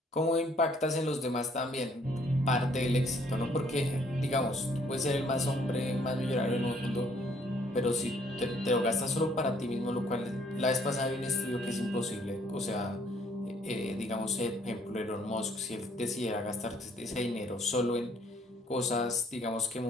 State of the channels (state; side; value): normal; both; correlation 0.64